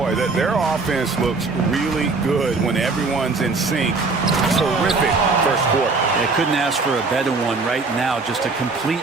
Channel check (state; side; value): quieter; left; 4.0 dB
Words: their offense looks really good when everyone's in sync. Terrific first quarter. They couldn't ask for a better one right now. Just a complete